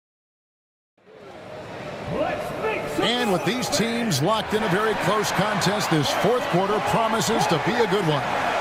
And with these teams locked in a very close contest, this fourth quarter promises to be a good one.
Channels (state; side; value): identical; both; correlation 1.00